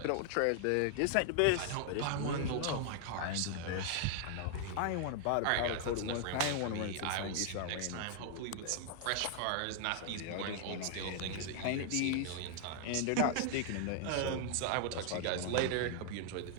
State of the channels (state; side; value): different; both; correlation 0.00